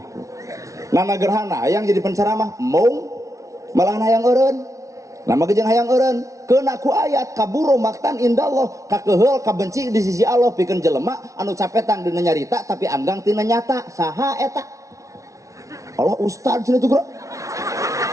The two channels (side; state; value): left; late; 0.15 ms